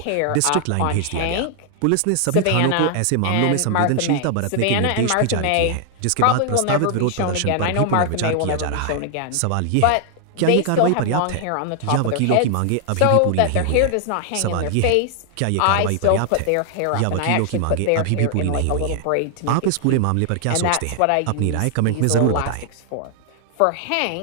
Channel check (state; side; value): different; both; correlation 0.00